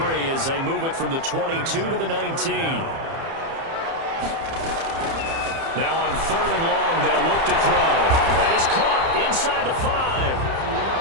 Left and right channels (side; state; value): left; late; 30 ms